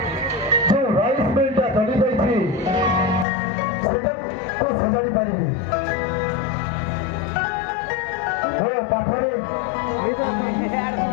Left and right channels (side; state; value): right; drops out; at 3.2 s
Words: ଯେଉଁ ରାଇସ୍ ମିଲଟା ଚଳିଯାଇଛି ସେଟାକୁ ସଜାଡ଼ି ପାରିବି? ମୋ ପାଖରେ